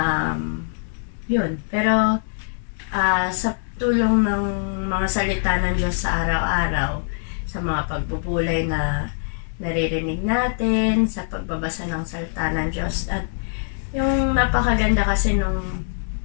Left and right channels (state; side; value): silent; right; digital silence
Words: Yun. Pero sa tulong ng mga salita ng Diyos sa araw-araw, sa mga pagbubulay na naririnig natin, sa pagbabasa ng salita ng Diyos, at yung napakaganda kasi nung